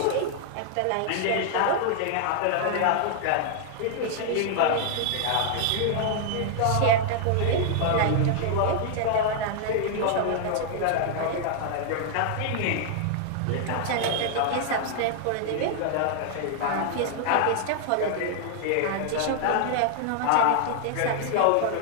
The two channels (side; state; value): both; different; correlation -0.01